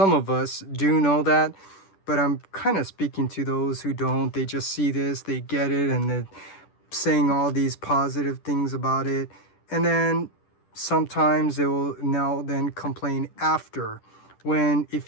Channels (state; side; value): late; right; 10 ms